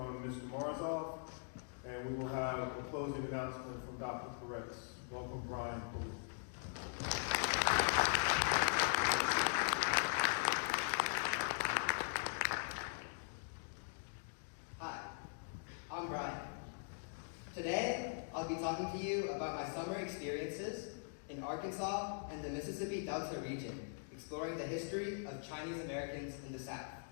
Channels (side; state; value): right; silent; digital silence